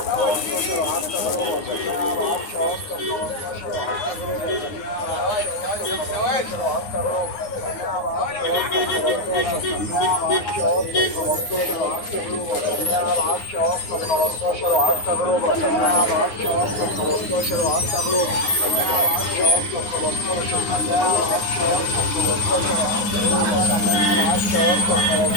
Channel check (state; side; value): late; right; 9.6 ms